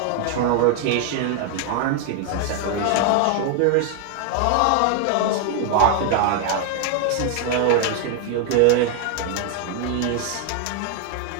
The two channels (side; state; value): both; different; correlation 0.00